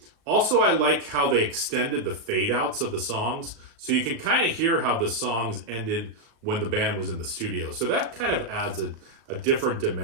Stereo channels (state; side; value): late; left; 36 ms